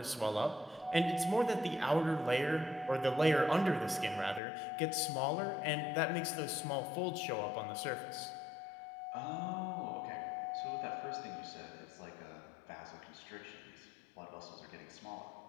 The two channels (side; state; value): right; drops out; at 4.4 s